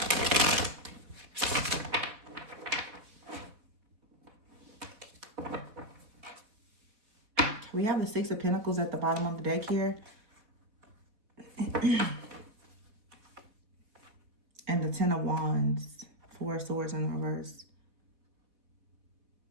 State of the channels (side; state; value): left; late; 4.1 ms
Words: We have the Six of Pentacles at the bottom of the deck here. And the Ten of Wands. Four of Swords in reverse.